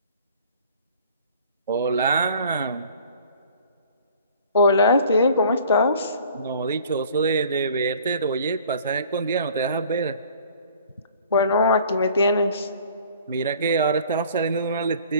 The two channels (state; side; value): inverted; both; correlation -0.50